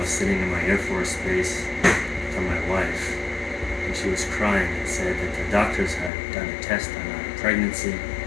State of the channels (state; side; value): drops out; right; at 6.1 s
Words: sitting in my Air Force base from my wife. And she was crying and said that the doctors had done a test on her pregnancy